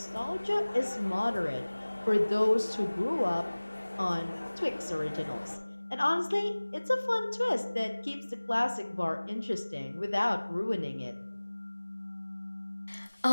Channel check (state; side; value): inverted; both; correlation -1.00